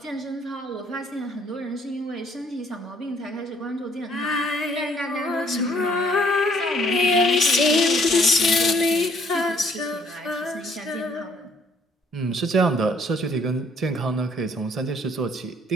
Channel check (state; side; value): normal; both; correlation 0.62